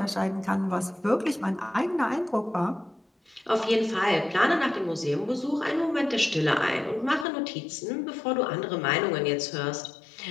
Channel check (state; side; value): drops out; right; at 7.2 s